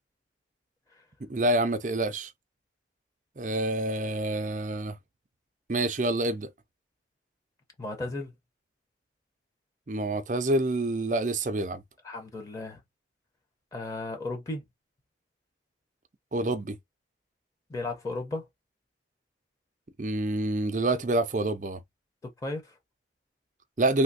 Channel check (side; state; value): both; normal; correlation 0.27